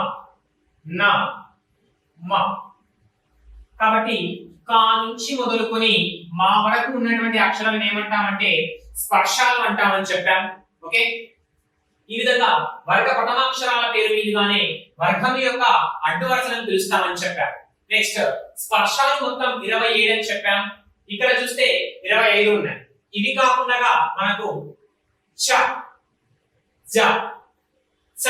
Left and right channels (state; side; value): identical; both; correlation 1.00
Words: న, మ. కాబట్టి కా నుంచి మొదలుకొని మా వరకు ఉన్నటువంటి అక్షరాలను ఏమంటామంటే స్పర్శాలు అంటామని చెప్పాం. ఓకే, ఈ విధంగా వర్గ ప్రథమాక్షరాల పేరు మీదుగానే వర్గం యొక్క అడ్డు వరుసలను పిలుస్తామని చెప్పాం. నెక్స్ట్ స్పర్శాలు మొత్తం 27 అని చెప్పాం. ఇక్కడ చూస్తే 25 ఉన్నాయి. ఇవి కాకుండా మనకు చ, జ, చ,